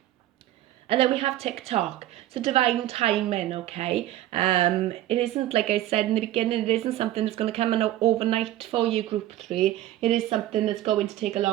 And then we have TikTok. So divine timing, okay? It isn't, like I said in the beginning, it isn't something that's going to come in overnight for you, group 3. It is something that's going to take a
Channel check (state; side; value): quieter; left; 14.0 dB